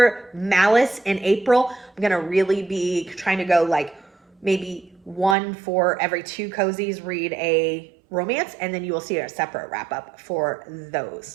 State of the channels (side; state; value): left; drops out; at 5.4 s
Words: Malice in April, I'm going to really be trying to go like maybe one for every two cozies, read a romance, and then you will see a separate wrap-up for